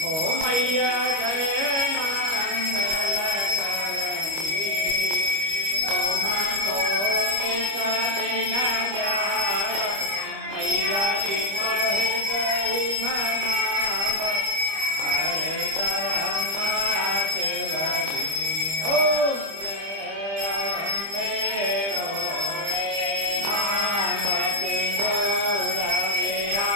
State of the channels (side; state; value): left; late; 25 ms